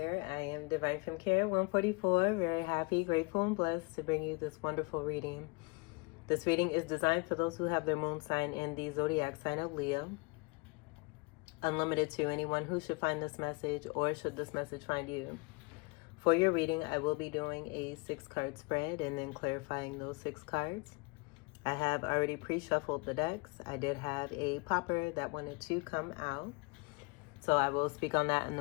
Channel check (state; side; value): quieter; right; 28.8 dB